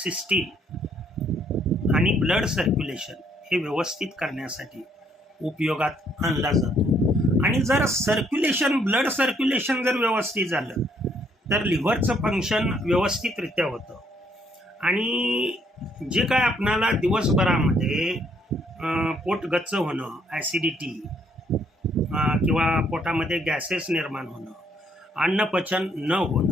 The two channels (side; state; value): both; normal; correlation 0.68